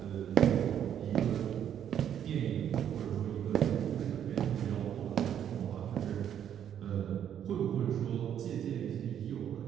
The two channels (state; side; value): quieter; left; 9.6 dB